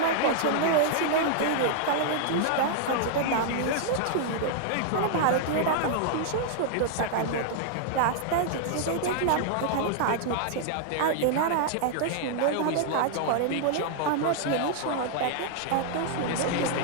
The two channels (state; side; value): different; both; correlation -0.01